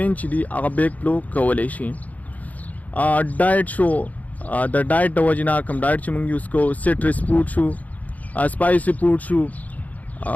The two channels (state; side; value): late; right; 0.076 ms